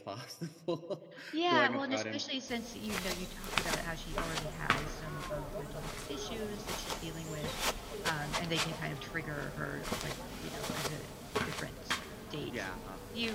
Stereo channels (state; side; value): identical; both; correlation 1.00